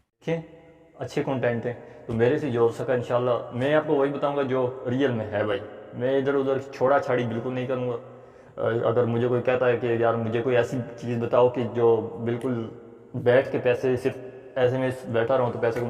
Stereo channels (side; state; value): both; identical; correlation 1.00